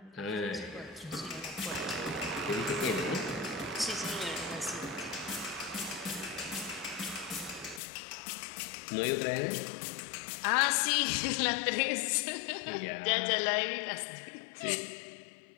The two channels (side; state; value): right; drops out; at 7.8 s